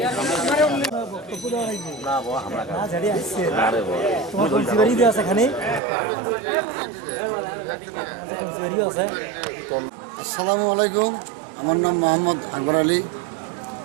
আসসালামু আলাইকুম। আমার নাম মোহাম্মদ আকবর আলী।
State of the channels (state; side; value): drops out; left; at 5.8 s